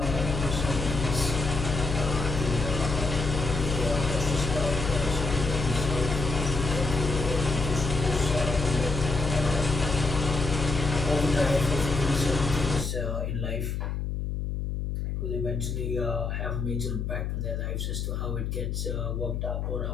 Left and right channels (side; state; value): left; noise; hum, 2 dB below the sound